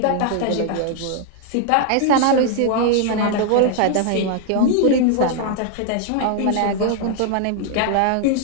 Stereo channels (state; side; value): different; both; correlation 0.00